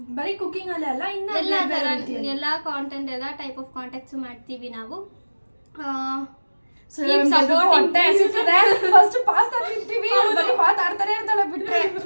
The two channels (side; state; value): both; inverted; correlation -1.00